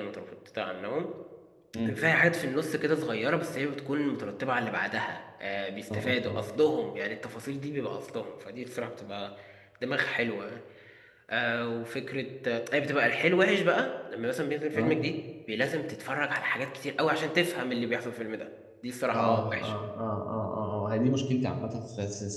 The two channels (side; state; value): both; identical; correlation 1.00